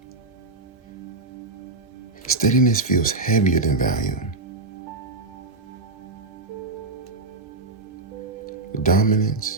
Steadiness feels heavier than volume.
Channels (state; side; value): quieter; left; 3.4 dB